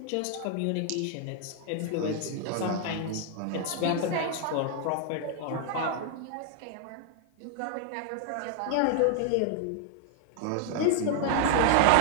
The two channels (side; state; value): both; different; correlation 0.00